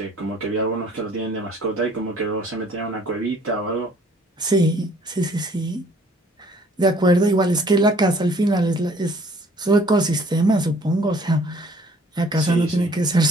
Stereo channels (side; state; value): both; normal; correlation 0.57